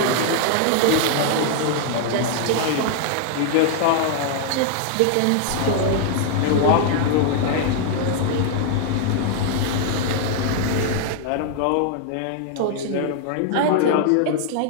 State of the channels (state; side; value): different; both; correlation 0.00